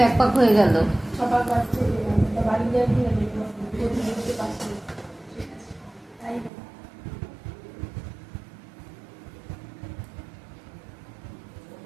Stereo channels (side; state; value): left; drops out; at 6.5 s